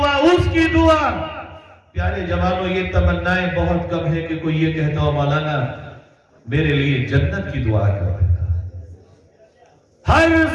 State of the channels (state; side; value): identical; both; correlation 1.00